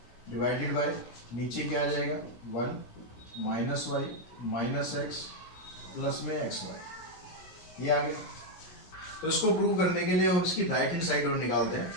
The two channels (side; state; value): right; late; 17 ms